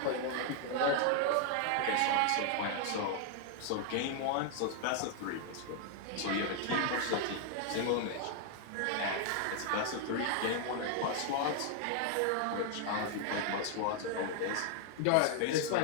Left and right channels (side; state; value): both; different; correlation 0.00